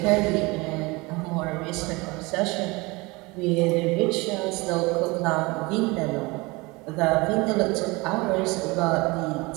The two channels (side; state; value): left; quieter; 24.5 dB